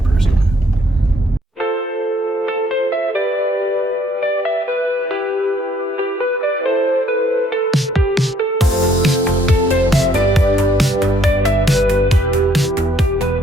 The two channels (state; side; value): normal; both; correlation 0.64